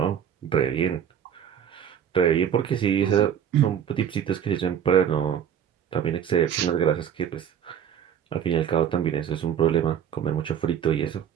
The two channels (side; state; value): left; quieter; 8.9 dB